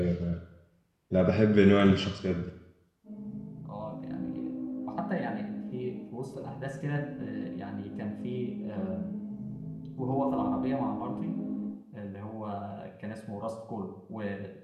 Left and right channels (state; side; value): identical; both; correlation 1.00